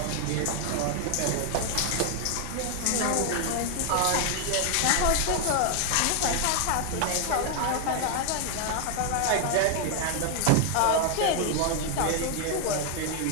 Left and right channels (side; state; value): both; different; correlation 0.00